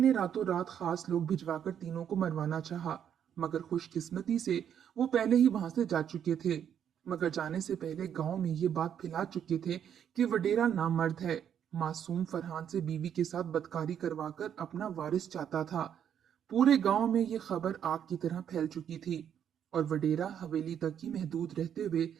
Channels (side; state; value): left; quieter; 9.0 dB